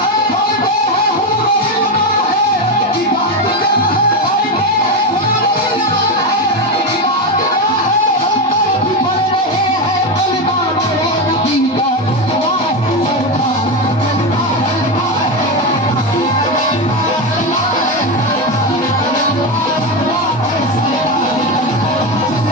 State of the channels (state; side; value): normal; both; correlation 0.14